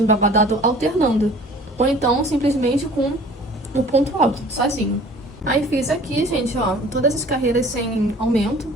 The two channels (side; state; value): both; normal; correlation 0.48